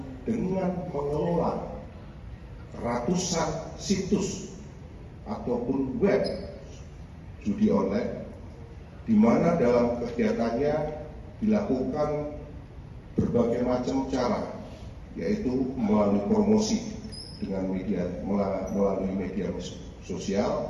dengan mengelola ratusan situs ataupun web judi online, di mana dalam kegiatannya dilakukan berbagai macam cara, yaitu melalui promosi dengan melalui media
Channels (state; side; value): identical; both; correlation 1.00